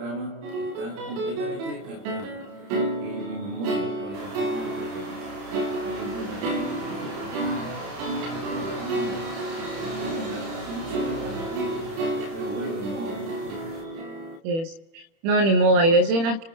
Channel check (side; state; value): left; late; 30 ms